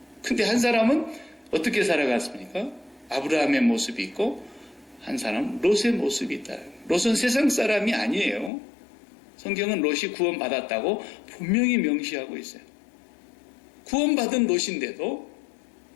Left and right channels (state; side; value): drops out; right; at 8.5 s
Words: 근데 한 사람은 어떻게 살아갔습니까? 아브라함의 모습이 있고 한 사람은 롯의 모습이 있다. 롯은 세상 사람이 아니에요. 성경은 롯이 구원받았다고 분명히 명시하고 있어요. 구원받은 롯인데도